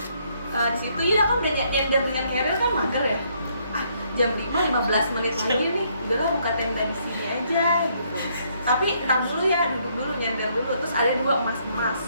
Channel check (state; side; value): inverted; both; correlation -0.70